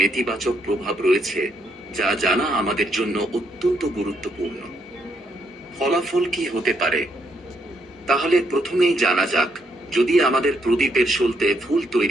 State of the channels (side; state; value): both; normal; correlation 0.75